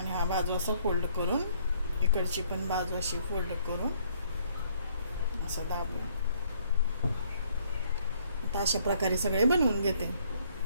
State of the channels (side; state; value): both; inverted; correlation -0.65